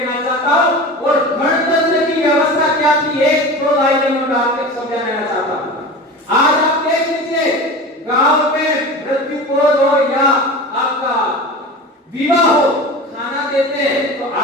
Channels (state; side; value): normal; both; correlation 0.32